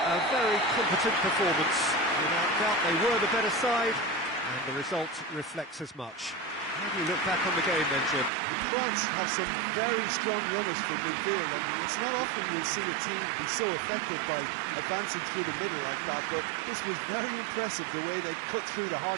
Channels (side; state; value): left; drops out; at 8.3 s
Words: a very competent performance. Without doubt, they were the better side, and the result reflects as much. How do you look back on the game then, Jim? France have some very strong runners from midfield, and it's not often you'll see a team be so effective by advancing through the middle like that, but this was very impressive, the way they cut through the